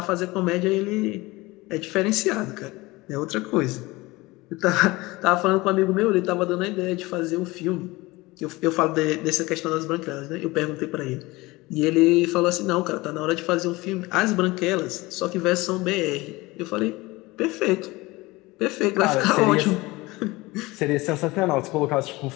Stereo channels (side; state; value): right; quieter; 21.5 dB